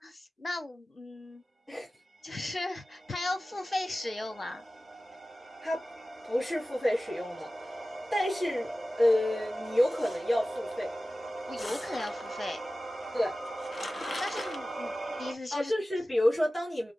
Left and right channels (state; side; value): normal; both; correlation 0.96